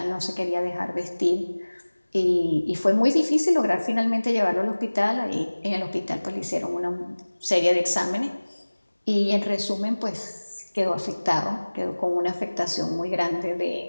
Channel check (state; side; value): inverted; both; correlation -1.00